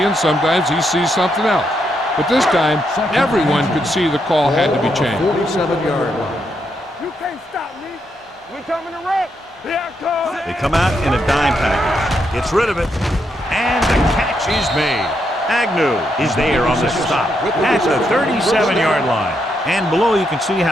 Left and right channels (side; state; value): both; normal; correlation 0.79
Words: sometimes he sees something else. But this time, everyone could see the call had to be changed. 47-yard line. You can't stop me. We coming to wreck. Here I come. They come out in a dime package. Gets rid of it. And the catch is made. Agnew is there on the stop at the 37-yard line. And below you can see